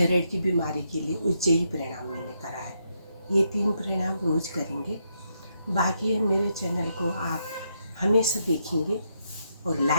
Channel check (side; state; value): both; inverted; correlation -0.79